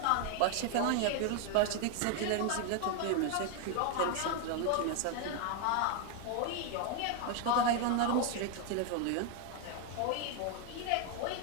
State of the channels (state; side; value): different; both; correlation 0.01